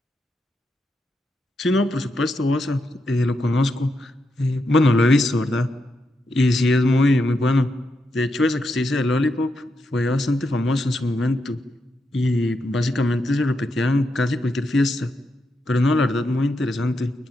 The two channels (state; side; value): normal; both; correlation 0.84